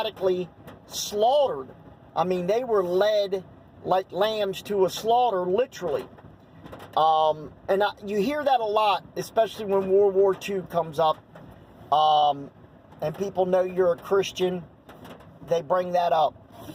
slaughtered? I mean, they were led like lambs to a slaughter, literally. You hear that a lot, especially when World War II comes up, and people know you're a Christian. They bring that up.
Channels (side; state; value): both; identical; correlation 1.00